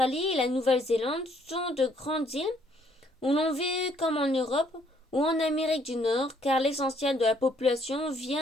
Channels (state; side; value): normal; both; correlation 0.66